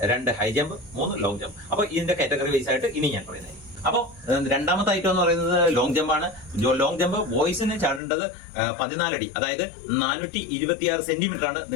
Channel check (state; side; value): drops out; right; at 8.0 s